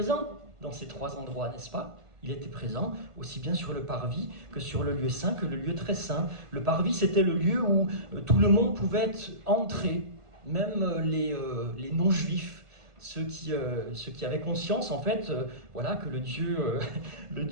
dans ces 3 endroits, n'est-ce pas ? Il était présent aussi bien sur le parvis que sur le lieu saint, que le lieu très saint. Le parvis, c'était le lieu où tout le monde pouvait entrer, même les non-juifs, ceux qui avaient conscience en fait, que le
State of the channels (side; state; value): left; late; 1.5 ms